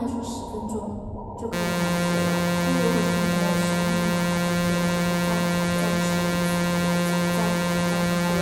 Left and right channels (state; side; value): identical; both; correlation 1.00